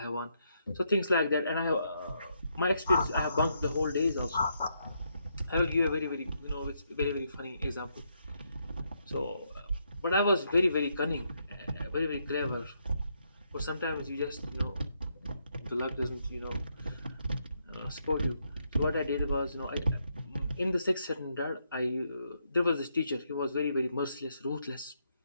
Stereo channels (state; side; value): inverted; both; correlation -0.77